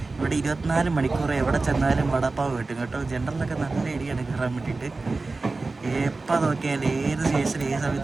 ഇവിടെ 24 മണിക്കൂർ എവിടെ ചെന്നാലും വടാപ്പാവ് കിട്ടും കേട്ടോ. ജനറലൊക്കെ നല്ല ഇടിയാണ് കയറാൻ വേണ്ടിയിട്ട്. എപ്പോൾ നോക്കിയാൽ ഏത് സ്റ്റേഷനിൽ ഏത്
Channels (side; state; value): left; quieter; 3.6 dB